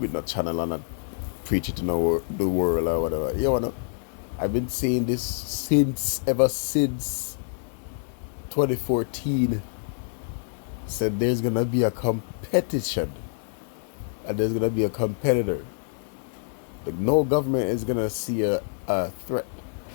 no channel and not preach it to the world or whatever. You know, I've been saying this ever since 2014. Said there's going to be a competition and there's going to be a competitor. Like, no government is going to see a threat,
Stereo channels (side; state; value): right; silent; digital silence